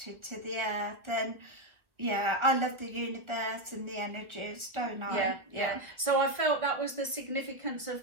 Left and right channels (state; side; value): late; left; 1.3 ms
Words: to the earth, and yeah, I love the universe and the energies, don't I? Yeah. So I felt that was the significance of